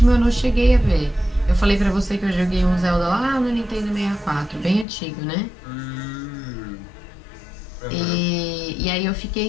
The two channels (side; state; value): right; drops out; at 4.9 s